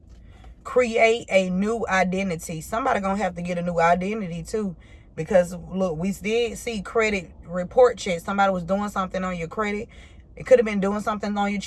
Create a new identity. Somebody gonna have to get a new identity too, because look, we did see credit report checks. Somebody was doing something on your credit. It could have been doing something on your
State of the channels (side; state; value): both; identical; correlation 1.00